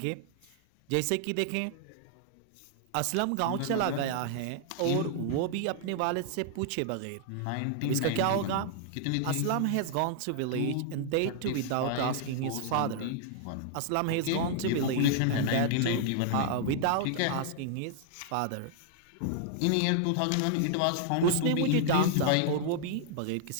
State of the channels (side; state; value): both; different; correlation -0.01